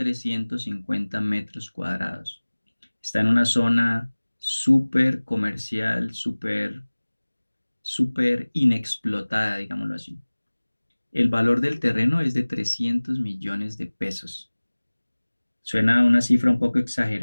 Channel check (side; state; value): both; inverted; correlation -1.00